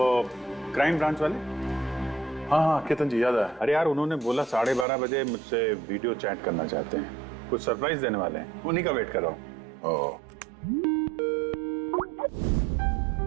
क्राइम ब्रांच वाले। हाँ हाँ, केतन जी याद आया। अरे यार, उन्होंने बोला 12:30 बजे मुझसे वीडियो चैट करना चाहते हैं, कुछ सरप्राइज देने वाले हैं, उन्हीं का वेट कर रहा हूँ। ओह,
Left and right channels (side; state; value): left; drops out; at 4.9 s